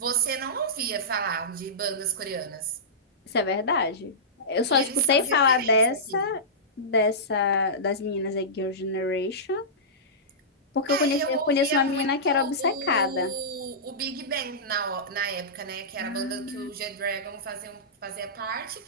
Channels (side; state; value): both; normal; correlation -0.18